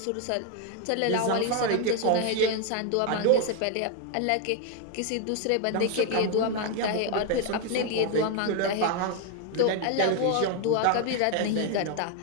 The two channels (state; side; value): different; both; correlation 0.01